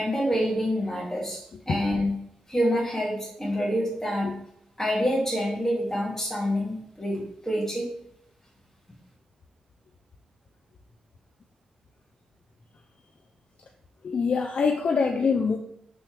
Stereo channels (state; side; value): normal; both; correlation 0.86